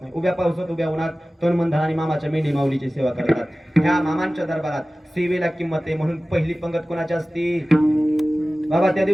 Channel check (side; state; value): both; normal; correlation 0.97